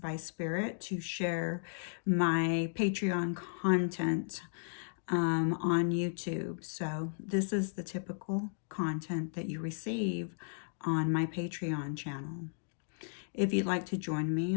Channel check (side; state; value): right; silent; digital silence